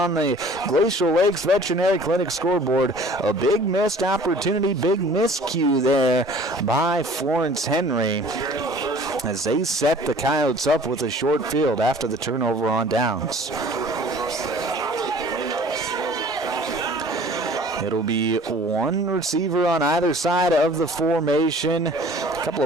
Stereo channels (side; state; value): both; normal; correlation 0.49